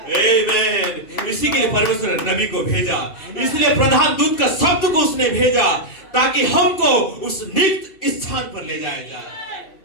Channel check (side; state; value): right; late; 2.7 ms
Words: आमीन, इसी के लिए परमेश्वर ने नबी को भेजा, इसलिए प्रधान दूत का शब्द को उसने भेजा ताकि हमको उस नित्य स्थान पर ले जाया जाए।